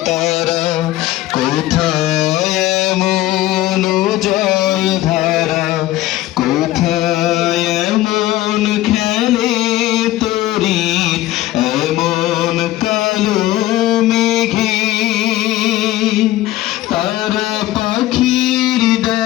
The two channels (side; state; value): right; quieter; 15.8 dB